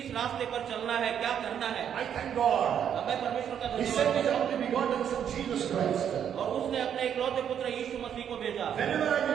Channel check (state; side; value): quieter; left; 8.9 dB